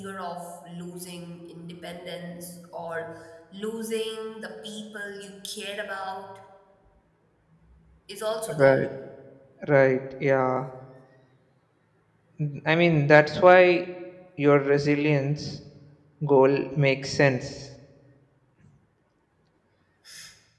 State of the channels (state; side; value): identical; both; correlation 1.00